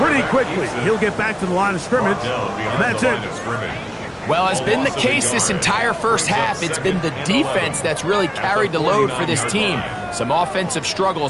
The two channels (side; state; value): both; identical; correlation 1.00